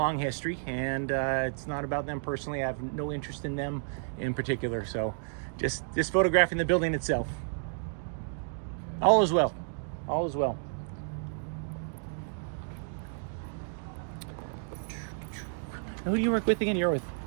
history, and it's not about them personally. I have no interest in them in particular. So just photographing the building itself. All is well. All is well. Now, who do you work with again? You're with,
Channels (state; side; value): silent; left; digital silence